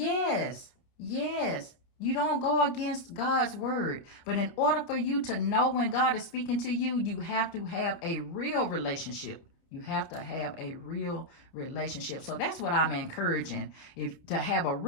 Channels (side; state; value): right; late; 29 ms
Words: yes. You don't go against God's word. But in order for you to know when God is speaking to you, you have to have a real relationship. You have to have a real relationship. So that's what I'm encouraging, to have a